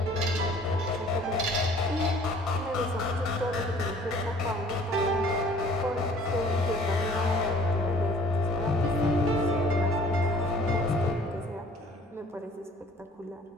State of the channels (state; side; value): normal; both; correlation 0.53